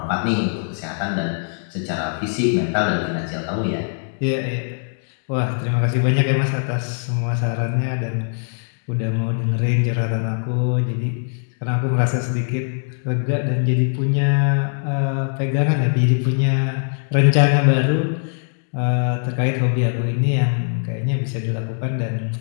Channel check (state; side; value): silent; right; digital silence